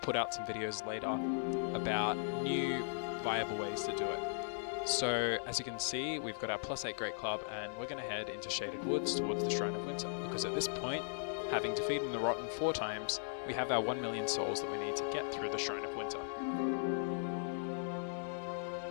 out some videos later about new viable ways to do it. So as you can see, we've got our +8 Great Club and we're going to head into Shaded Woods towards the Shrine of Winter, because at this point, having defeated the Rotten 4 times, we have our 1 million souls that we need to get through the Shrine of Winter.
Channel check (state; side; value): silent; right; digital silence